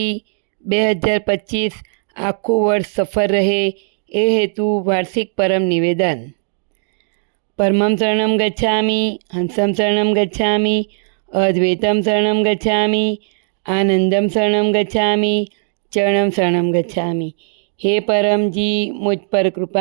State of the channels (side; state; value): left; silent; digital silence